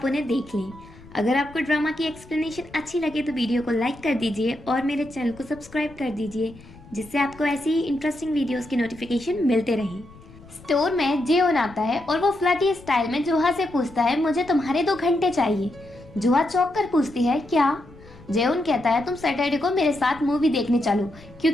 उन्हें देख लें। अगर आपको ड्रामा की एक्सप्लेनेशन अच्छी लगे तो वीडियो को लाइक कर दीजिए और मेरे चैनल को सब्सक्राइब कर दीजिए, जिससे आपको ऐसी ही इंटरेस्टिंग वीडियोस की नोटिफिकेशन मिलते रहें। स्टोर में जेओन आता है और वो फ्लर्टी स्टाइल में जोहा से पूछता है, मुझे तुम्हारे 2 घंटे चाहिए। जोहा चौंक कर पूछती है, क्या? जेओन कहता है, तुम सैटरडे को मेरे साथ मूवी देखने चलो,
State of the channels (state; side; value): noise; left; rumble, 21 dB below the sound